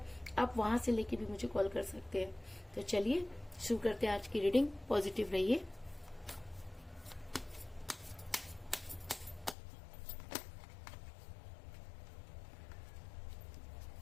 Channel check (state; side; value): drops out; right; at 9.6 s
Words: आप वहां से लेके भी मुझे कॉल कर सकते हैं। तो चलिए शुरू करते हैं आज की रीडिंग। पॉजिटिव रहिए।